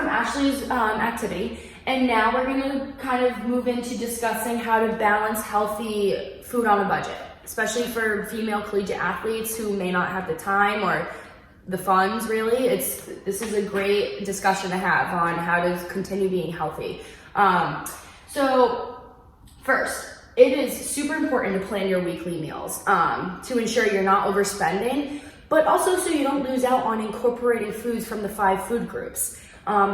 Ashley's activity, and now we're gonna kind of move into discussing how to balance healthy food on a budget, especially for female collegiate athletes who may not have the time or the funds, really. This is a great discussion to have on how to continue being healthy. So first, it is super important to plan your weekly meals to ensure you're not overspending, but also so you don't lose out on incorporating foods from the 5 food groups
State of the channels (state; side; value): identical; both; correlation 1.00